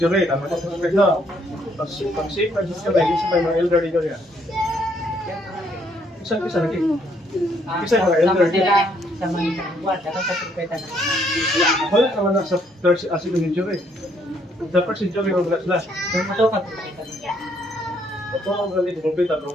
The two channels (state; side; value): normal; both; correlation 0.69